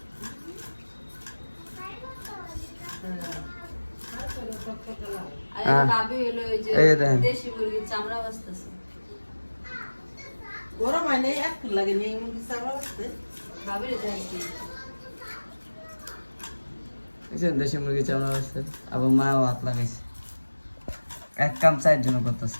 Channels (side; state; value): both; inverted; correlation -1.00